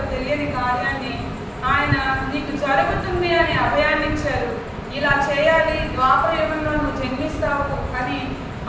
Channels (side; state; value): both; identical; correlation 1.00